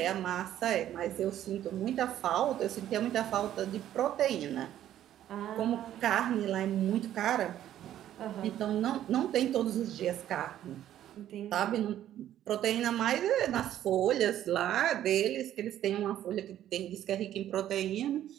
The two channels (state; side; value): quieter; left; 11.8 dB